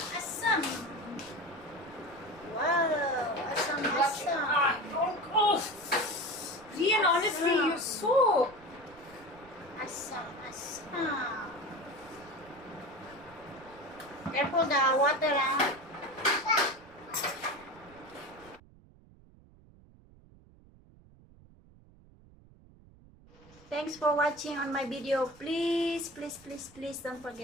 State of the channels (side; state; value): right; noise; rumble, 25 dB below the sound